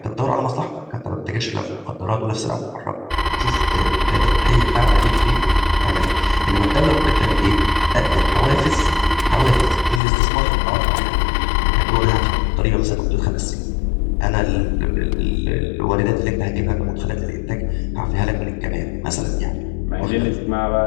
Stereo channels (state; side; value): drops out; right; at 10.0 s